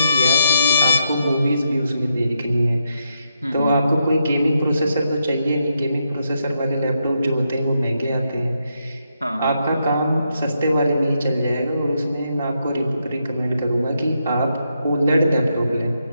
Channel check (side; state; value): both; inverted; correlation -0.81